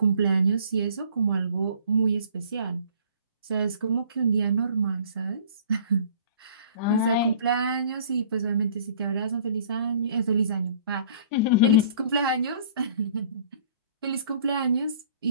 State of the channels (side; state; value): both; inverted; correlation -0.51